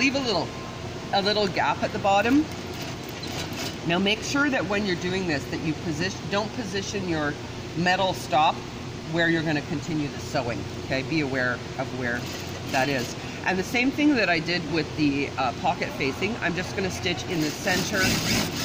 a little gap at the bottom. Now make sure that when you're doing this that you don't position your metal stop where you're going to continue the sewing. Okay, be aware of where that is. And the same thing that I did with the pocket facing, I'm just going to stitch in the center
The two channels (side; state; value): both; identical; correlation 1.00